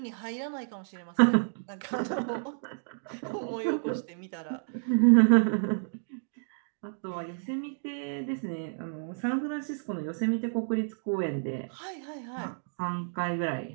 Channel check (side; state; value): left; silent; digital silence